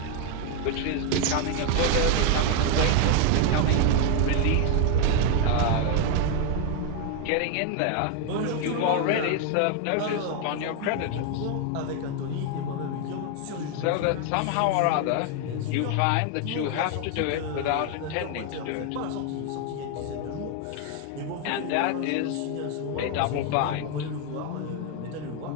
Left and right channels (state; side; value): different; both; correlation 0.01